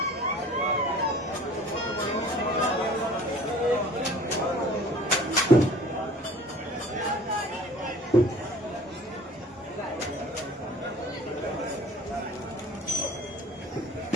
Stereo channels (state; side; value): normal; both; correlation 0.47